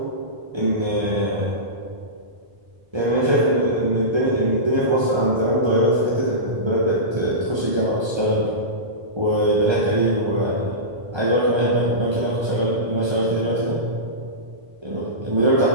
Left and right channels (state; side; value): late; left; 1.3 ms